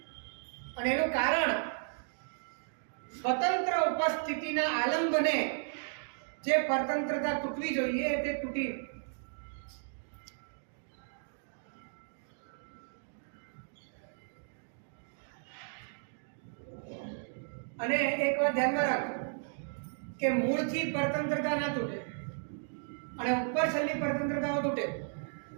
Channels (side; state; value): left; silent; digital silence